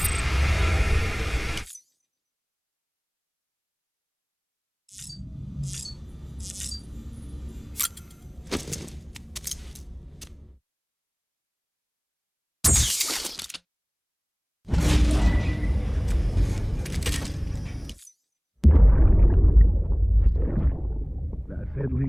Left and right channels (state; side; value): identical; both; correlation 1.00